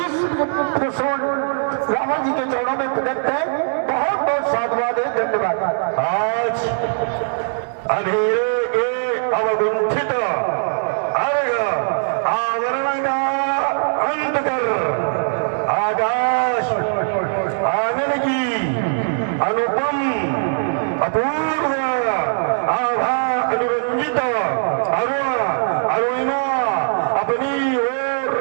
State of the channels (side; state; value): left; silent; digital silence